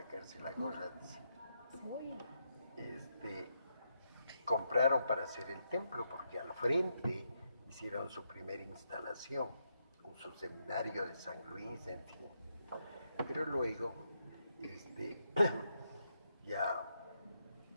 la gorra, dice. Compraron para hacer el templo, porque al frente hicieron su primera instalación, con su seminario de San Luis, en fin. Pero luego, ya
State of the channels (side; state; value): both; inverted; correlation -0.81